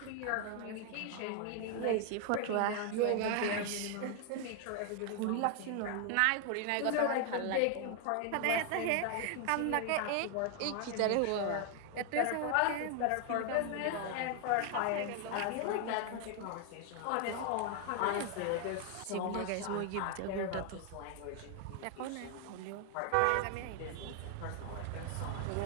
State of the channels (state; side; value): different; both; correlation 0.00